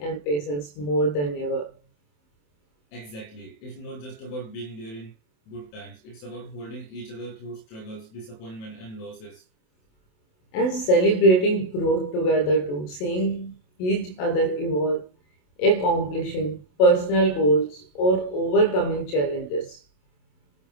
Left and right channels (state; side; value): late; right; 27 ms